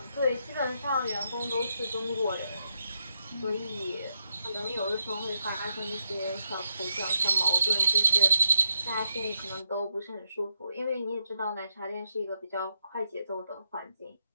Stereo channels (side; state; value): both; inverted; correlation -0.82